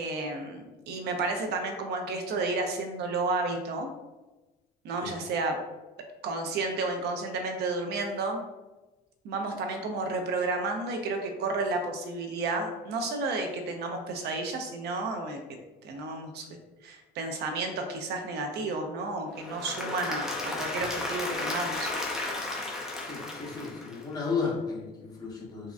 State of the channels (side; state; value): both; normal; correlation 0.23